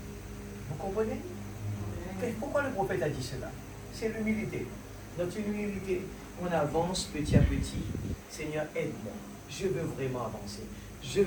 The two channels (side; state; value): both; identical; correlation 1.00